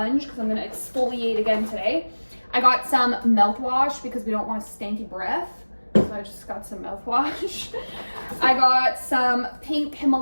because I'm gonna exfoliate again today. I got some mouthwash because we don't want a stanky breath. So I just got some mouthwash. I got some pink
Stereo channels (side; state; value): both; inverted; correlation -1.00